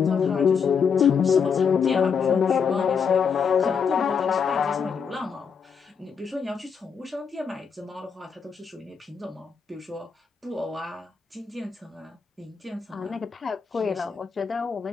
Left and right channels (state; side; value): quieter; right; 6.3 dB